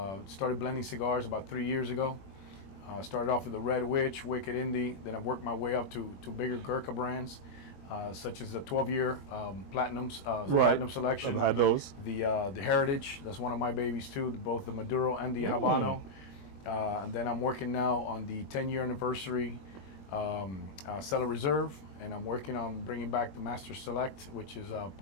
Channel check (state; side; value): late; right; 21 ms